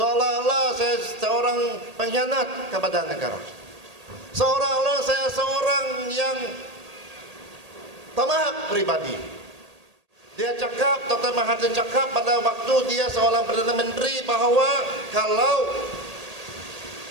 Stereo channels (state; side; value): late; left; 1.8 ms